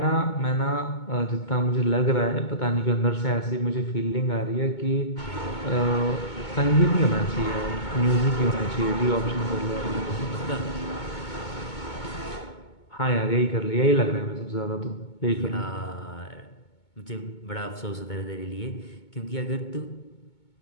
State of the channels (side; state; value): right; late; 2.2 ms